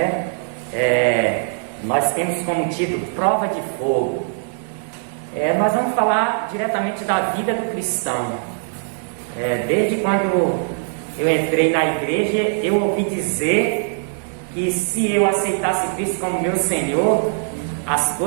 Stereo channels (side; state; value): left; silent; digital silence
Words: Nós temos como título Prova de Fogo. Nós vamos falar diretamente da vida do cristão. Desde quando eu entrei na igreja, eu ouvi dizer que se eu aceitasse Cristo como meu Senhor, as